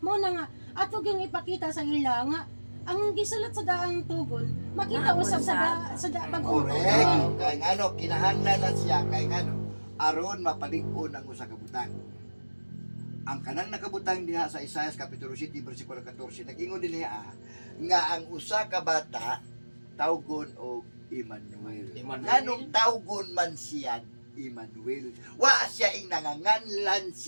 Mao na nga ato gyung ipakita sa ila nga ang gisulat sa daang tugon makita Naabot usab sa bagong tugon. Correct. Kay ngano kinahanglan na siya kay ngano aron mapalig-on ang usa ka butang. Ang kanang nakabutang diha sa Isaias kapitulo 7 bersikulo 14 nag-ingon din niya nga ang usa ka bata tawgon og Emmanuel. Emmanuel. Nganong tawgon man siya Emmanuel? Wa siya ing nanganganlan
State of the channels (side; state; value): both; inverted; correlation -1.00